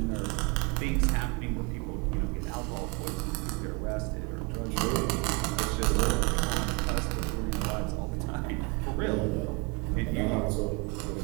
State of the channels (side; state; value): left; quieter; 28.3 dB